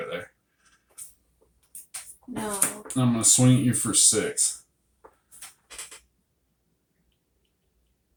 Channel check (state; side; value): identical; both; correlation 1.00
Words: there. No. I'm gonna swing at you for 6.